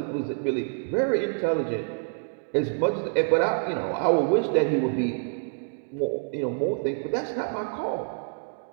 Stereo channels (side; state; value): left; silent; digital silence